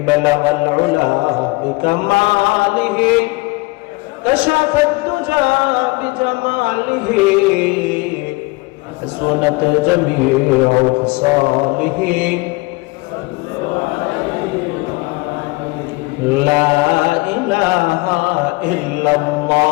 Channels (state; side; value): quieter; right; 24.2 dB